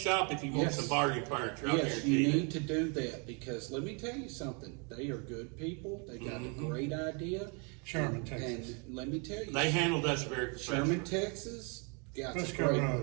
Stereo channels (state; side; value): quieter; left; 35.1 dB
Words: if you want Yes. some bargain furniture. I Yes, guarantee you you. need to do that because let me tell you something. They are good people. They got a great idea. Sherman, and, Texas. And let me tell you, They handled us very professionally. Sherman, Texas, got a Frisco great